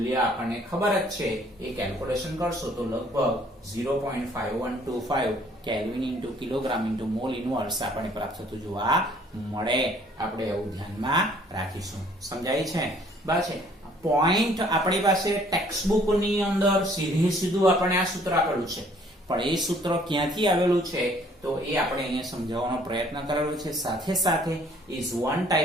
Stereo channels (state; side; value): normal; both; correlation 0.59